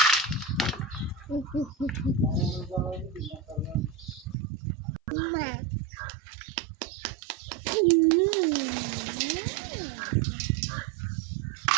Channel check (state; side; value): drops out; left; at 4.4 s